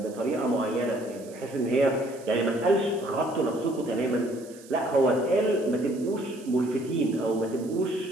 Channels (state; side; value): noise; right; hiss, 22 dB below the sound